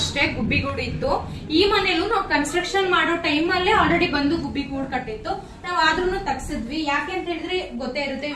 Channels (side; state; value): both; identical; correlation 1.00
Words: ಗುಬ್ಬಿಗೂಡು ಇತ್ತು. ಈ ಮನೇಲೂ ನಾವು ಕನ್ಸ್ಟ್ರಕ್ಷನ್ ಮಾಡೋ ಟೈಮ್ ಅಲ್ಲೇ ಆಲ್ರೆಡಿ ಬಂದು ಗುಬ್ಬಿಗೂಡು ಕಟ್ಟಿತ್ತು. ನಾವ್ ಆದ್ರೂ ತಗ್ಸಿದ್ವಿ. ಯಾಕೆ ಅಂತ ಹೇಳಿದ್ರೆ ಗೊತ್ತೇ ಇರುತ್ತೆ,